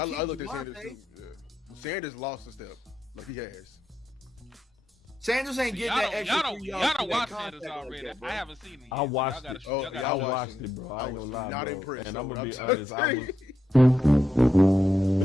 looked at Sanders Javonte. too. Yeah. Sanders lost a step, like he has. Sanders ain't getting that extra Y'all 3 don't yards. for that watch contact Sanders already. like that, bro. I haven't seen it. Yet. I watched it. Y'all gotta I I watch watched it. it, bro. I I ain't was gonna lie, not bro. impressed, And though, I'm gonna be I'm honest. telling I you. was.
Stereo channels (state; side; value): normal; both; correlation 0.83